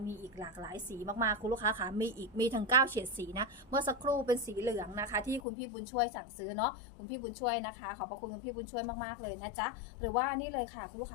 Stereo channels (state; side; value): drops out; right; at 5.4 s